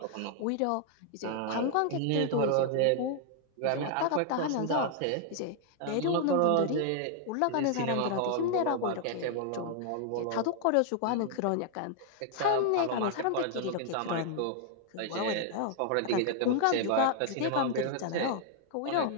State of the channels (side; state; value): both; different; correlation 0.00